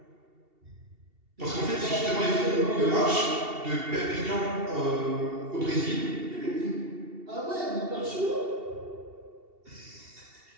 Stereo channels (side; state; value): left; late; 2.7 ms